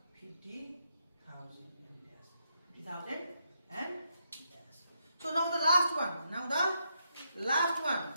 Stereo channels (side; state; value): both; inverted; correlation -0.80